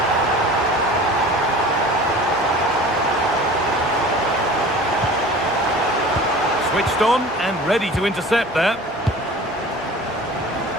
Switched on and ready to intercept there.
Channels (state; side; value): normal; both; correlation 0.41